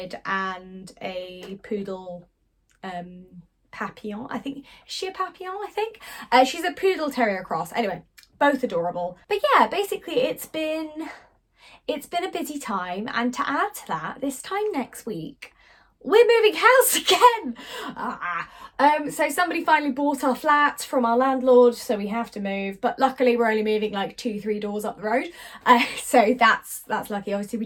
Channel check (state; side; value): identical; both; correlation 1.00